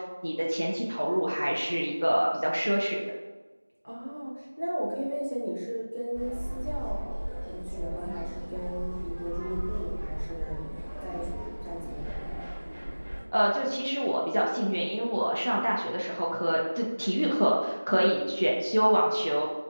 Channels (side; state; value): both; inverted; correlation -1.00